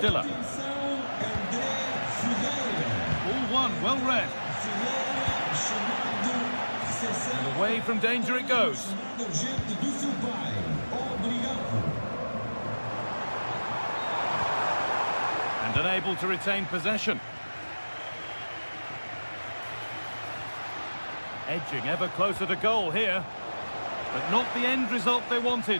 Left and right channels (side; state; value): both; inverted; correlation -1.00